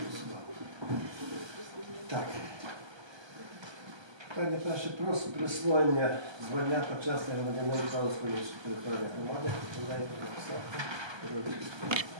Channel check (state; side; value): late; left; 1.2 ms